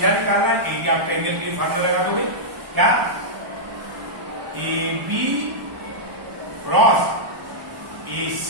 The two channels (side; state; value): left; late; 1.0 ms